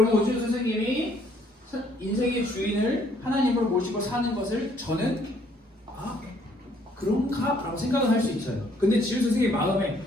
오지유 선생님이 인생의 주인을 하나님으로 모시고 사는 것을 저는 그런가? 라고 생각을 할 수 있어요. 근데 지유 선생님 마음에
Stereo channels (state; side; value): normal; both; correlation 0.64